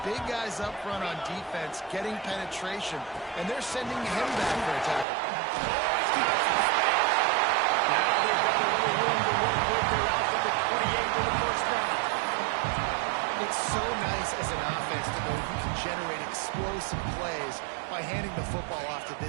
big guys up front on defense getting penetration, and they're sending him back for a tackle. Now they've got a little room to work with. They're out to the 28 for the first down. It's so nice as an offense to know you can generate explosive plays by handing the football off to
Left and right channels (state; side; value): drops out; left; at 5.1 s